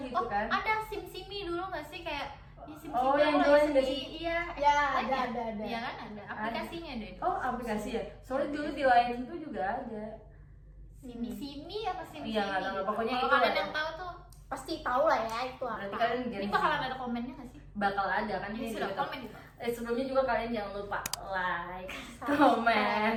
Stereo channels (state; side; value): identical; both; correlation 1.00